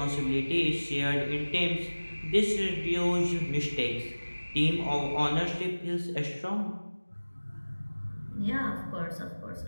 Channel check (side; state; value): both; inverted; correlation -1.00